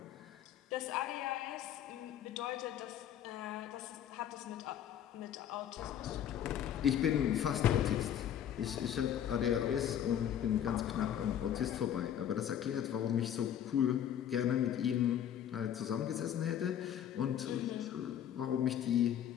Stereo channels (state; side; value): quieter; right; 10.1 dB